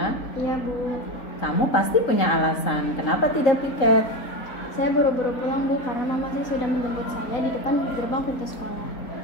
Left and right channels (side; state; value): right; late; 3.9 ms